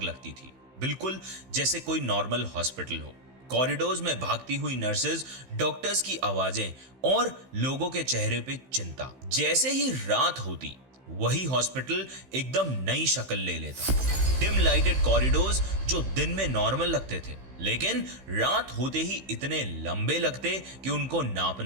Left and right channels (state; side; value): late; left; 15 ms